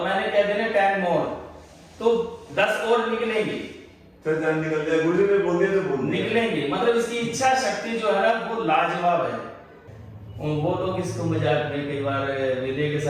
मैंने कह देना 10 मोर, तो 10 और निकलेंगे, तो जान निकल जाए। गुरुजी ने बोल दिया तो बोल दिया। निकलेंगे। मतलब इसकी इच्छा शक्ति जो है ना वो लाजवाब है। वो लोग इसको मजाक में कई बार विनय के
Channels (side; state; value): both; identical; correlation 1.00